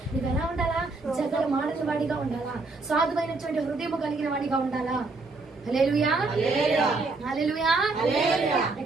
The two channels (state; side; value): quieter; left; 3.5 dB